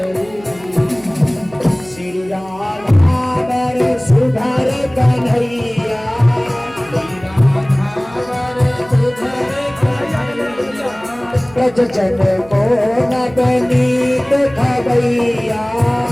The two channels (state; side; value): noise; right; hum, 22 dB below the sound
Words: श्री राधावर सुधर कन्हैया, ब्रज जन को नवनीत खबैया,